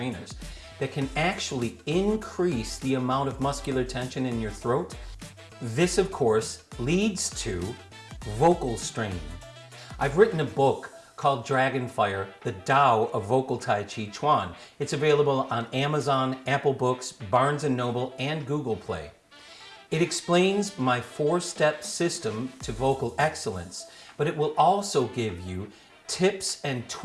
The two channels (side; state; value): both; identical; correlation 1.00